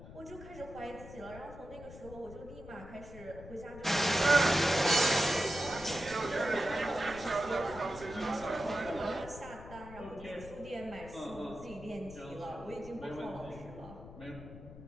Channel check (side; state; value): left; noise; rumble, 15 dB below the sound